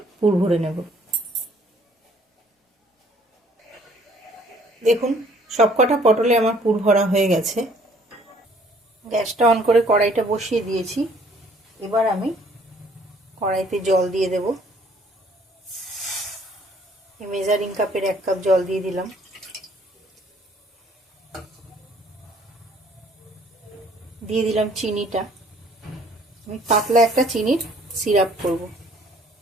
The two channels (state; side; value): normal; both; correlation 0.59